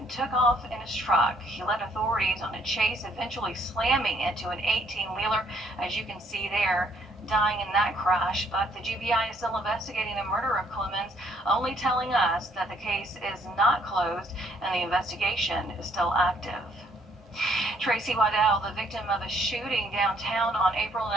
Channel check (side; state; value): both; normal; correlation 0.66